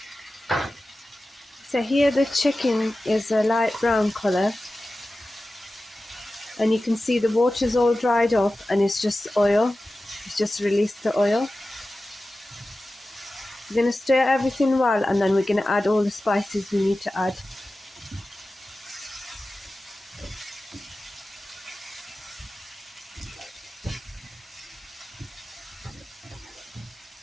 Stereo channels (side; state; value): both; normal; correlation 0.95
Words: So here the chicken is a light brown colour and you can see the water's all dried off and it's just oil. It's just released the oil. We're going to stir everything well and then we're going to add all the spices we need to add.